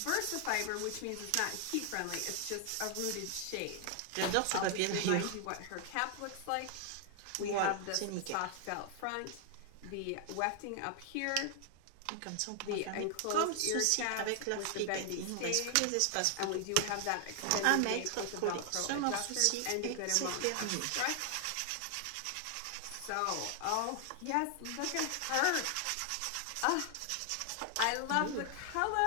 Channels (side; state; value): both; different; correlation 0.00